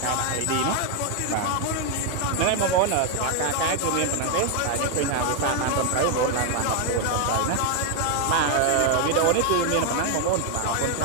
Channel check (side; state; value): both; different; correlation 0.01